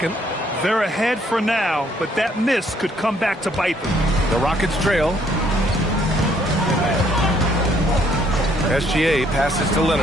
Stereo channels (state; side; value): normal; both; correlation 0.66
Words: They're ahead for now, but that miss could come back to bite them. The Rockets trail. SGA passes to